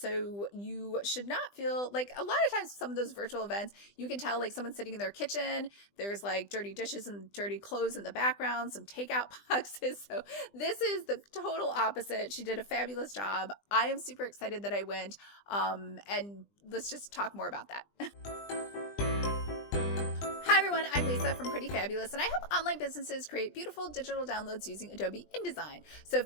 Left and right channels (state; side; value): late; right; 20 ms